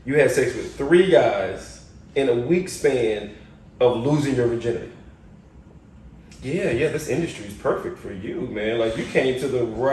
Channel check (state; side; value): identical; both; correlation 1.00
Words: you had sex with 3 guys in a week span of losing your virginity. Yeah, this industry is perfect for you, man. You came to the